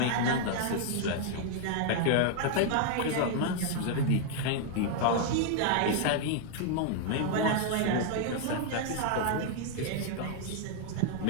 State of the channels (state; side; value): different; both; correlation 0.00